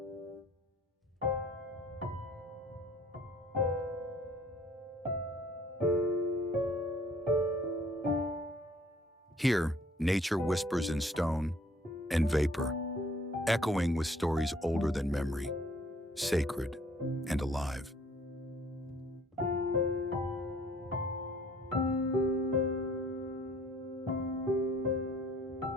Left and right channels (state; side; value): normal; both; correlation 0.57